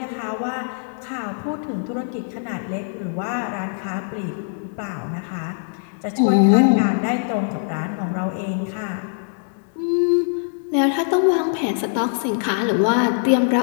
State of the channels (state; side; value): silent; right; digital silence